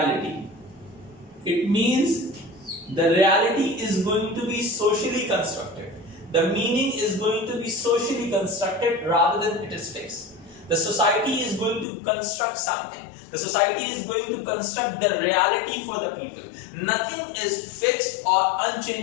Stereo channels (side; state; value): right; drops out; at 11.9 s